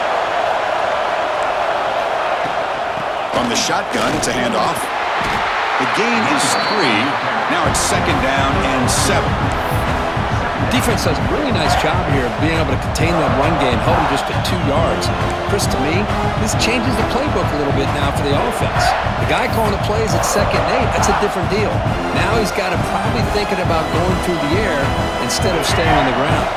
From the shotgun, it's a handoff. The gain is 3. Now it's 2nd down and 7. Defense does a really nice job here of being able to contain that run game, held him just at 2 yards. Chris, to me, this changes the playbook a little bit now for the offense. The guy calling the plays at 2nd and 8, that's a different deal. Now he's got to probably thinking about going through the air instead of staying on the ground.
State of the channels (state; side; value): identical; both; correlation 1.00